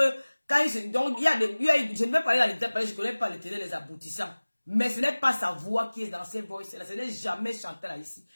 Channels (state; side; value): inverted; both; correlation -1.00